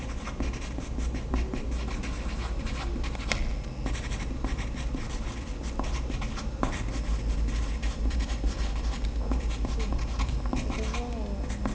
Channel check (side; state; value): both; identical; correlation 1.00